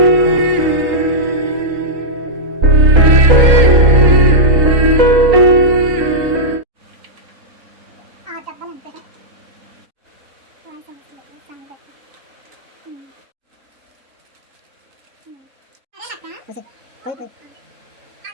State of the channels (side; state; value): left; late; 3.9 ms